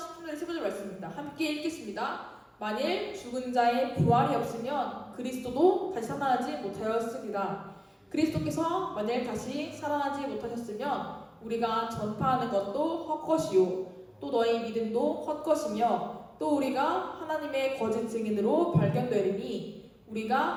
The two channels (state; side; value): identical; both; correlation 1.00